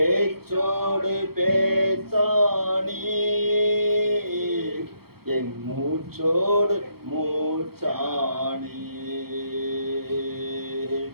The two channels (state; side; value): late; left; 0.95 ms